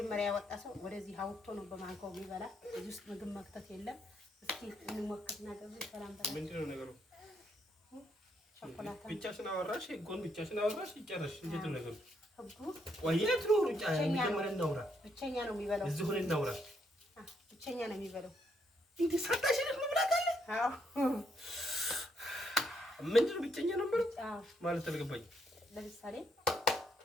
ያወጣ ሰው ወደዚህ አውጥቶ ነው በማንካው የሚበላ። እዚህ ውስጥ ምግብ መክተት የለም። እስኪ እንሞክርና ገቡ። ሰላም በላ። ምንድነው ነገሩ? ቸኮላታ ብቻሽን አወራሽ፣ ጎን ብቻሽን አወራሽ። ይጨረሽ። እንዴት ነው ነገሩ? ህጉ ወይት ነው ሩጫ? መጀመሪያ እናውራ። ብቸኛ ነው የሚበላው። እዚህ ሆነ እናውራ። ብቸኛ ነው የሚበላው። እንዴ ሳታሽን መብላት አለ? አዎ። ምንድነው ብቸኛ ነው ማለት? አዎ ማለት አልገባኝም። ለምሳሌ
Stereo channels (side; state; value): both; normal; correlation 0.74